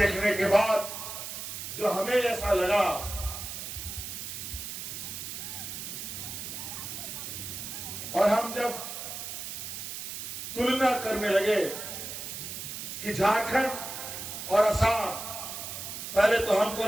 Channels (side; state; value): right; noise; hiss, 7 dB below the sound